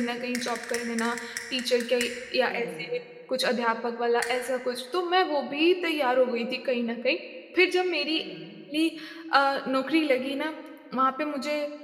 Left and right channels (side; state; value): both; identical; correlation 1.00